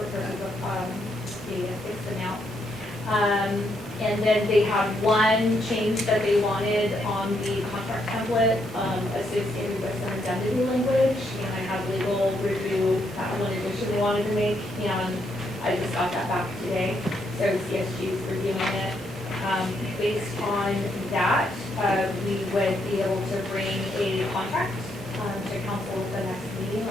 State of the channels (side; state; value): both; normal; correlation 0.76